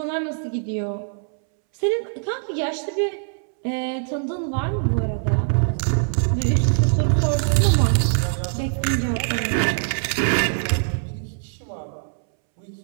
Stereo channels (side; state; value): left; silent; 64 dB below the other